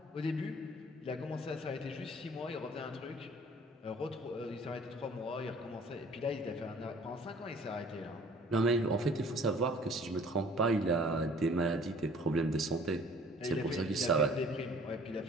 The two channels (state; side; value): normal; both; correlation 0.53